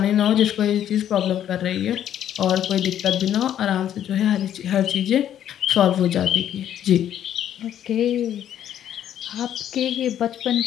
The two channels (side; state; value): right; quieter; 10.6 dB